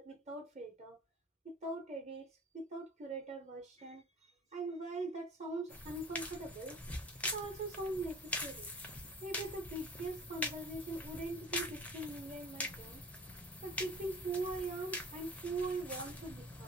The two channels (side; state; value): both; normal; correlation 0.44